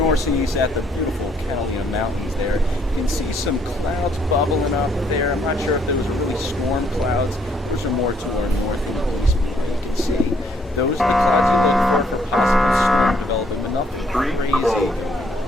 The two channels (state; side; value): normal; both; correlation 0.68